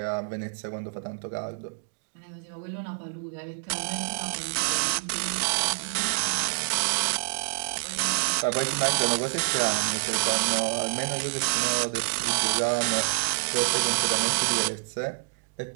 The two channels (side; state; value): left; silent; digital silence